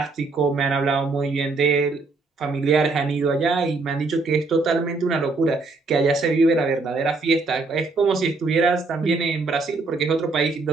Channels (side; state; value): left; quieter; 3.7 dB